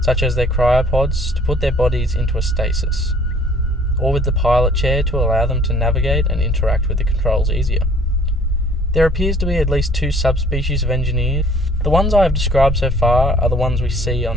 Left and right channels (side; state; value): both; normal; correlation 0.56